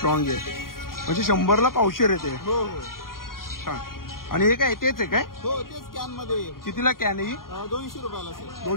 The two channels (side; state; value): right; late; 0.91 ms